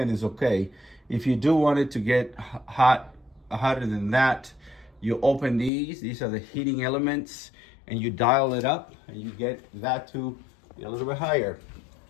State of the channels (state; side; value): drops out; right; at 5.7 s